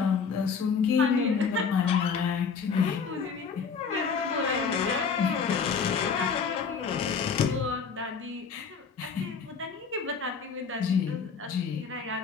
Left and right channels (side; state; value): right; quieter; 5.8 dB